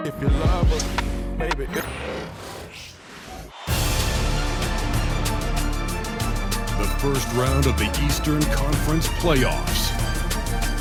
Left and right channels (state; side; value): identical; both; correlation 1.00